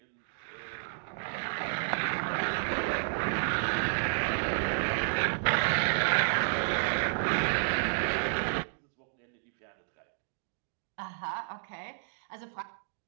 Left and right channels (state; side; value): silent; left; digital silence